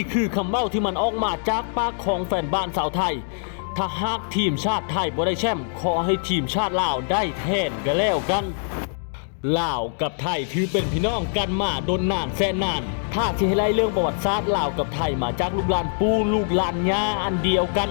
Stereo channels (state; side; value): silent; right; 61 dB below the other